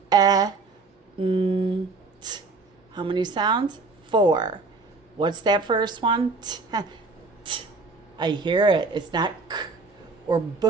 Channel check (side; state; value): left; quieter; 3.9 dB